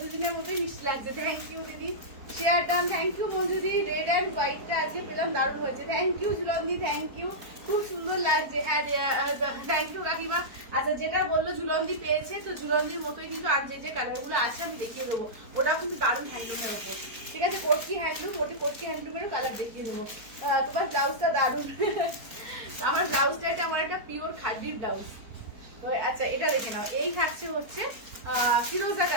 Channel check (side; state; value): left; late; 4.4 ms